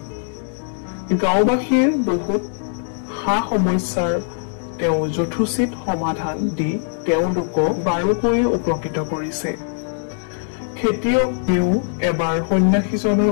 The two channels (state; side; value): silent; right; digital silence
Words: গাঁওবাসীৰ বহুত সা সমস্যাৰ তেওঁ যথোচিত সমাধান দি তেওঁলোকক বাৰুকৈয়ে উপকৃত কৰিছে। খেতিয়কেও এবাৰ সন্যাসীজনৰ